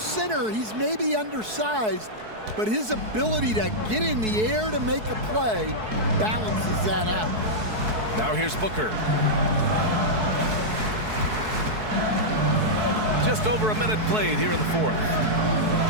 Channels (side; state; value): left; late; 4.6 ms